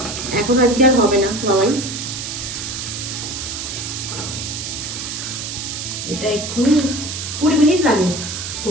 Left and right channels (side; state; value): right; noise; hiss, 6 dB below the sound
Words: এখন আজকে আর হবে না বাবাই, এটা এক্ষুনি 20 মিনিট লাগে